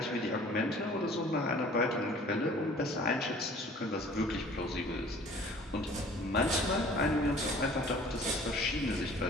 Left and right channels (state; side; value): normal; both; correlation 0.50